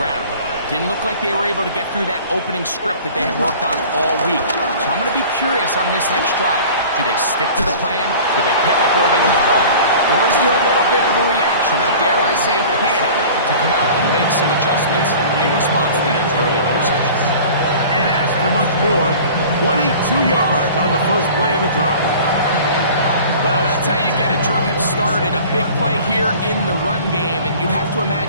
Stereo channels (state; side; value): inverted; both; correlation -0.43